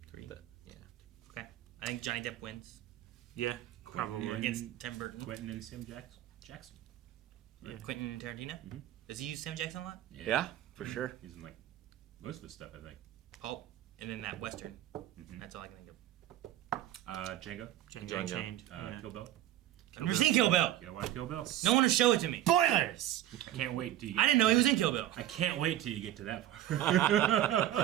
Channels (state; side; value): quieter; left; 13.1 dB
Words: 3. Yeah. Okay. I think Johnny Depp wins Yeah, probably. against Tim Burton. Quentin and Sam Jackson. Quentin Tarantino? Does he use Sam Jackson a lot? Yeah, for sure. He's in like most of his stuff, I think. Pulp. And then that Western. That's all I can think of. Django. Django Unchained. Yeah. Kill Bill. I've never seen Kill Bill. You gotta watch Kill Bill. No one will show it to me. Spoilers! I can't wait till you I get didn't know he was in Kill Bill. I can't wait till you get to that